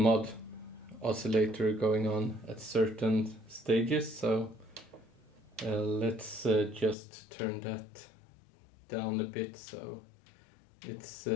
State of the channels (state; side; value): drops out; right; at 7.0 s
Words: oscillator going on at certain stages, so let's just turn that down a bit so it's